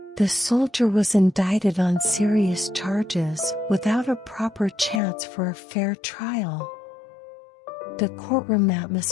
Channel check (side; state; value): right; drops out; at 5.0 s